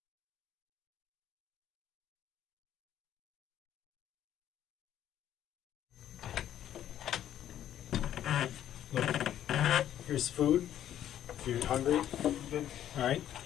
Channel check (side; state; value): right; quieter; 11.1 dB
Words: Here's food if you're hungry. Okay. All right.